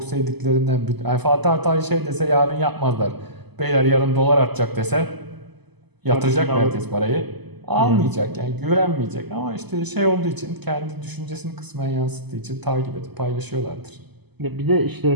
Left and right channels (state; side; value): late; left; 0.99 ms